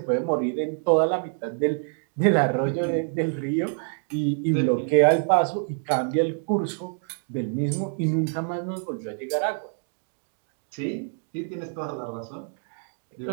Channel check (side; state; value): left; silent; 61 dB below the other